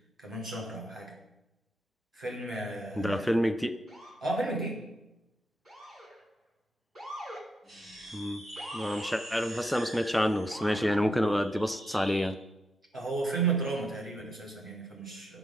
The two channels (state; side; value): normal; both; correlation 0.80